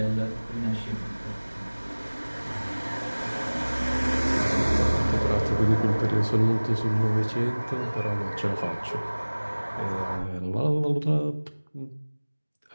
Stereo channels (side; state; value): both; inverted; correlation -1.00